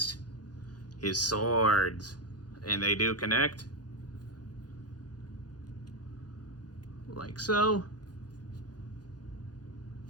his swords. And they do connect. Like so.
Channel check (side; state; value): right; late; 0.69 ms